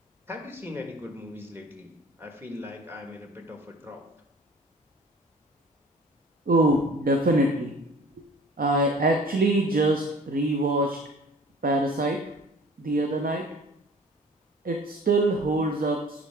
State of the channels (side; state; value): both; normal; correlation 0.47